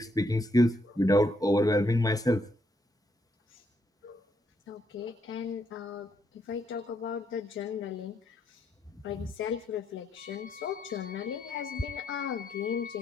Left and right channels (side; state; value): both; normal; correlation 0.75